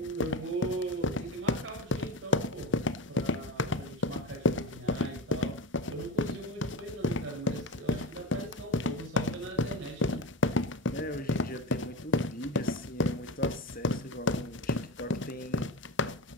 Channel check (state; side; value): normal; both; correlation 0.25